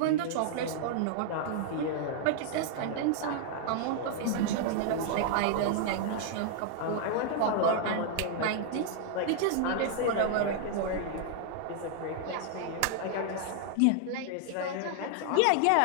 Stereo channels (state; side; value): different; both; correlation -0.01